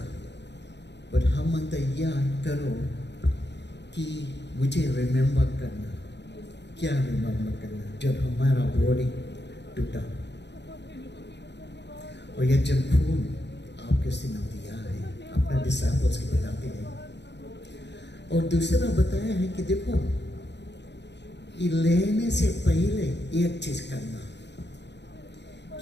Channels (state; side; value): late; right; 0.50 ms